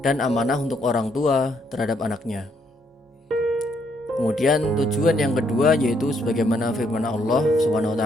dan amanah untuk orang tua terhadap anaknya. Kemudian tujuan yang kedua yaitu sebagaimana firman Allah Subhanahu wa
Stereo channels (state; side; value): normal; both; correlation 0.72